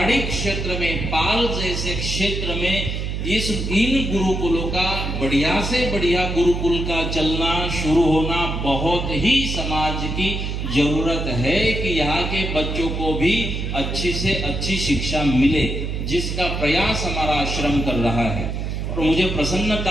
क्षेत्र में, पाल जैसे क्षेत्र में इन गुरुकुलों का, बढ़िया से बढ़िया गुरुकुल का चलना शुरू होना बहुत ही समाज की जरूरत है कि यहाँ के बच्चों को भी अच्छी से अच्छी शिक्षा मिले, जिसका प्रयास हमारा आश्रम कर रहा है। और मुझे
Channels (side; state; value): right; noise; hum, 3 dB below the sound